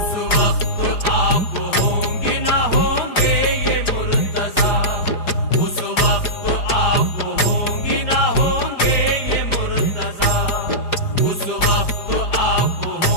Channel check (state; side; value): late; right; 4.9 ms